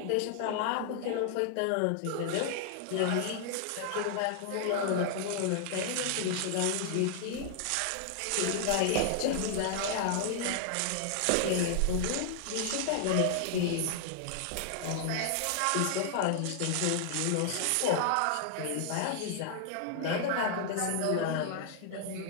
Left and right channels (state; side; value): different; both; correlation 0.00